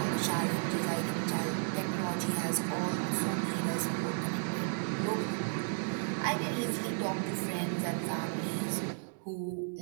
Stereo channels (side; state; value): left; silent; 55 dB below the other